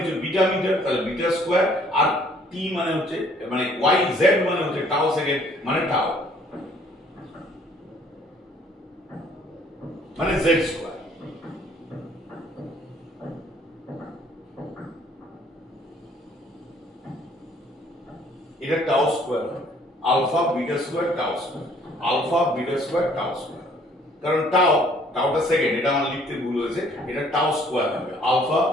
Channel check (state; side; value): normal; both; correlation 0.60